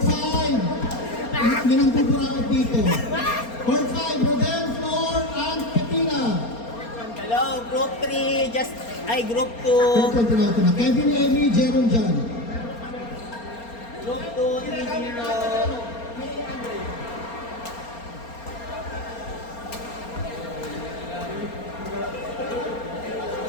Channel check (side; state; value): right; late; 4.3 ms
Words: hindi nang pupurakot dito. Court 5, Rodel, Flor, and Petina. Hello, group 3, group 2. Court 1, tinawag na. Kevin, Emmy, Jerome, John. Group 2, 3-0.